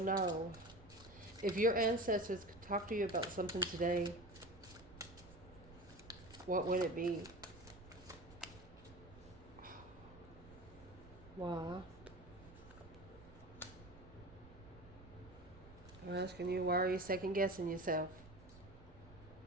If your ancestors could talk to you about something today, what would it be? Why? I'm asking you, why are you second guessing yourself?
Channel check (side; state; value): right; noise; rumble, 19 dB below the sound